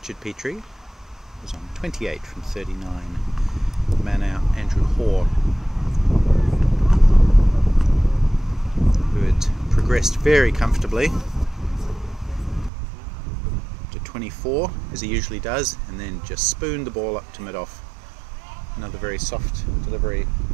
Petrie, who was on 28 from 39. Man out, Andrew Hoare, who had progressed very comfortably to 24, as he usually does, and then just spooned the ball up to mid-off. Another very soft delivery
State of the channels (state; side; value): drops out; left; at 12.7 s